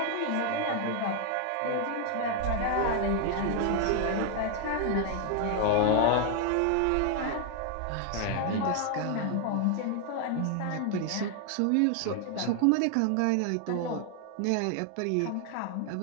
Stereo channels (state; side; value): different; both; correlation 0.00